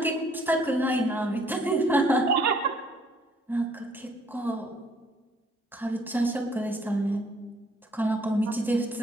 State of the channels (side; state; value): both; normal; correlation 0.63